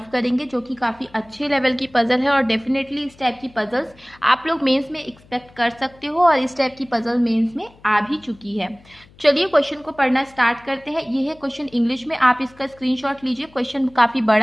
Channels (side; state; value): left; noise; hum, 27 dB below the sound